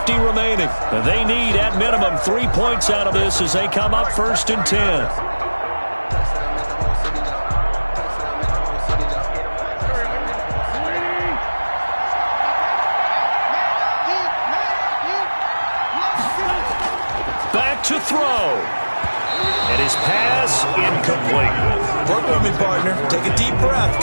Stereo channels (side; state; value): both; inverted; correlation -1.00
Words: remaining. And they need, at minimum, 3 points out of this as they come up 1st and 10. Back to throw. And his pass incomplete. Work with me, partner. Take a deep breath,